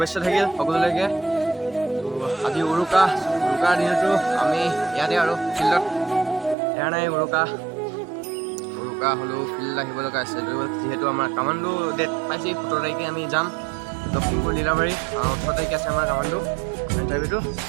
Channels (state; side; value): drops out; left; at 6.6 s